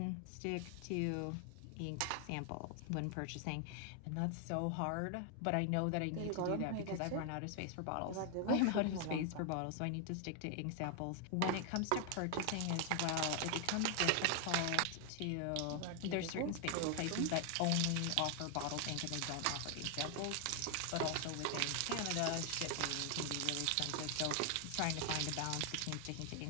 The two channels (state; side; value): different; both; correlation 0.00